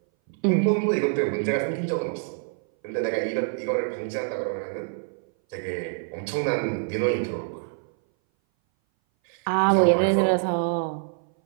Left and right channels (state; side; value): silent; left; 59 dB below the other